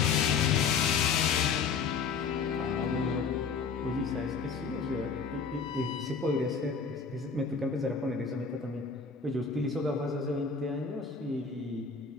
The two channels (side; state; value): right; quieter; 5.4 dB